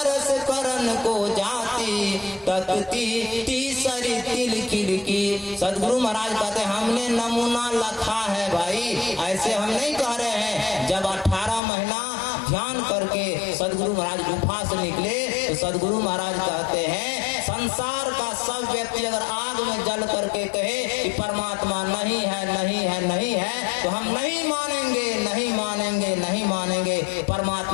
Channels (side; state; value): right; drops out; at 11.6 s